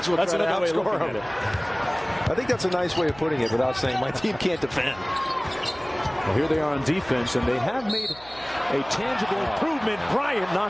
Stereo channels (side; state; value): right; noise; hum, 21 dB below the sound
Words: as well try to outscore him. I think that's a nice way of putting it without saying my team can't defend. Well, here they are on defense, and they have made a tangible improvement. Bryant